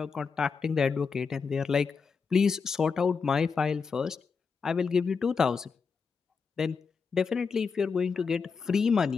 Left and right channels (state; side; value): quieter; right; 5.4 dB